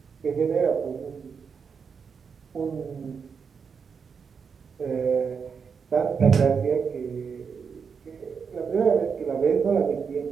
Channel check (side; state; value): left; quieter; 6.1 dB